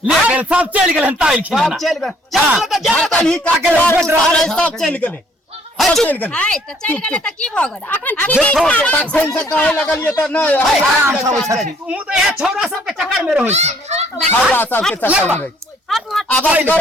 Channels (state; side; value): normal; both; correlation 0.62